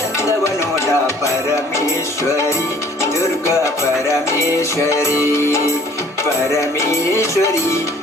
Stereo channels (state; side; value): normal; both; correlation 0.55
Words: ನೋಡ ಪರಮೇಶ್ವರಿ ದುರ್ಗಾ ಪರಮೇಶ್ವರಿ ಪರಮೇಶ್ವರಿ